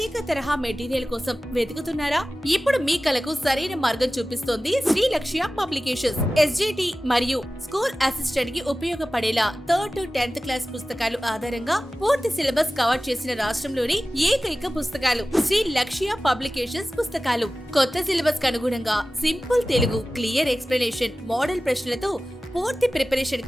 తరహా మెటీరియల్ కోసం వెతుకుతున్నారా? ఇప్పుడు మీ కలకు సరైన మార్గం చూపిస్తోంది శ్రీ లక్ష్య పబ్లికేషన్స్. ఎస్జిటి మరియు స్కూల్ అసిస్టెంట్ కి ఉపయోగపడేలా 3rd to 10th క్లాస్ పుస్తకాలు ఆధారంగా పూర్తి సిలబస్ కవర్ చేసిన రాష్ట్రంలోని ఏకైక పుస్తకాలు శ్రీ లక్ష్య పబ్లికేషన్స్ పుస్తకాలు. కొత్త సిలబస్ కు అనుగుణంగా simple Telugu, clear explanation, model ప్రశ్నలతో పూర్తి ప్రిపరేషన్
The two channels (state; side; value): normal; both; correlation 0.96